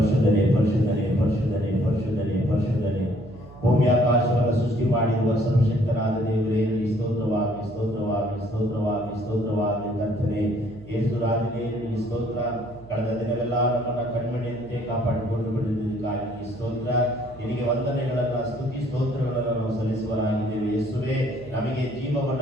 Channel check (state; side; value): noise; right; hum, 19 dB below the sound